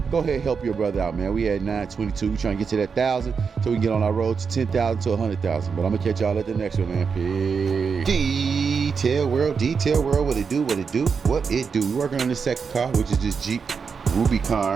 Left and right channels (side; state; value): left; quieter; 5.7 dB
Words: go ahead and help your brother out, man. We at 922, we trying to get to that 1,000 so we can get on our road to 10,000 to 100,000. But I'm gonna catch y'all at the next one, man. Peace. Detail world, what it do. We're working on the second car, which is this Jeep